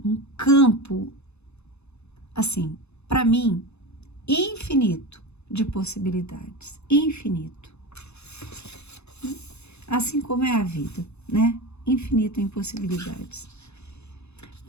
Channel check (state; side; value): late; right; 0.81 ms